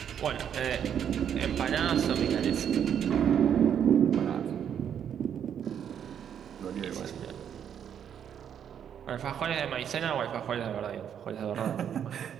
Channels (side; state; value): left; quieter; 8.8 dB